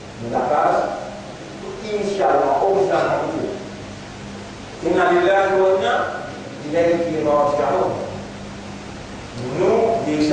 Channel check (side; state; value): both; identical; correlation 1.00